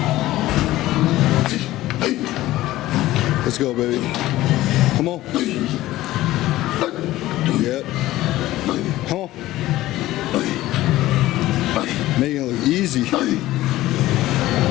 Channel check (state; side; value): quieter; right; 16.1 dB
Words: let's go, baby. Come on. Yep. Come on. Making it look easy.